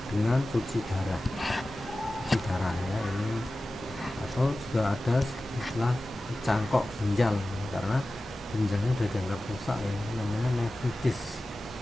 dengan cuci darah ya ini, atau juga ada istilah cangkok ginjal karena ginjalnya sudah dianggap rusak ya, namanya nefritis.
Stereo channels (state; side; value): normal; both; correlation 0.95